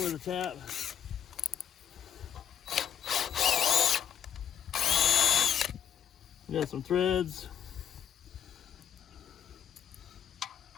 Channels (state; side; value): quieter; right; 9.1 dB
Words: a tap. Got some threads.